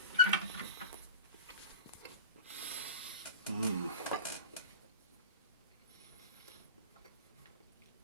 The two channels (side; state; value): both; inverted; correlation -0.34